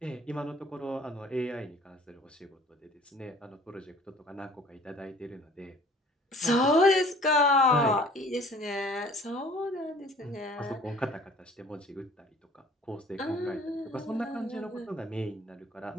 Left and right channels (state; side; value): normal; both; correlation 0.51